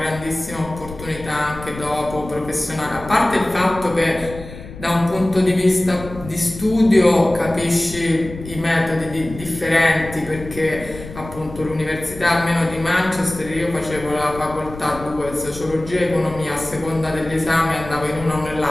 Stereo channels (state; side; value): noise; left; rumble, 14 dB below the sound